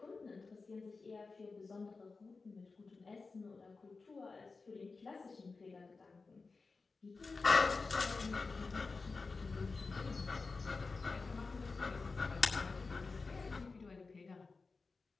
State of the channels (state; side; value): quieter; right; 4.1 dB